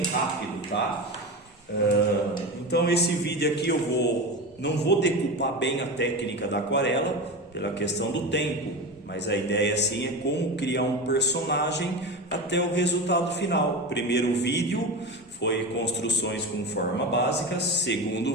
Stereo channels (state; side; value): normal; both; correlation 0.24